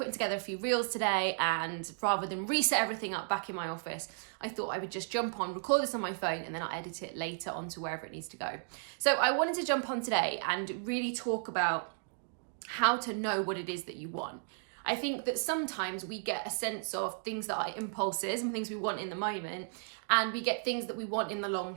together a few reels today, and rather than reset everything up back in my office, I thought I would just jump on, record this on my phone, and then I'll edit it later onto wherever it needs to go. So I wanted to jump on today and really talk about how to know what it is that you want. I think that sometimes we get a sense of things that are impulses and things we want in the moment, and we get things that we want in the long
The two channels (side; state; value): left; silent; digital silence